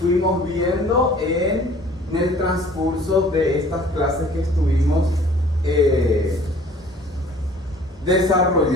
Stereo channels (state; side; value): normal; both; correlation 0.52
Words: viendo en el transcurso de estas clases que estuvimos